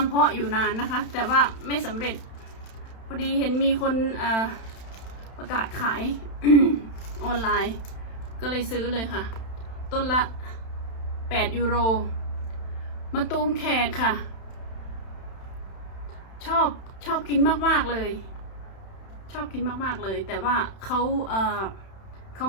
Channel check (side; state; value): right; late; 31 ms